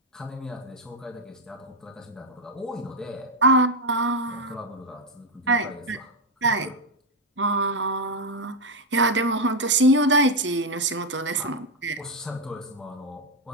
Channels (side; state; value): both; normal; correlation 0.04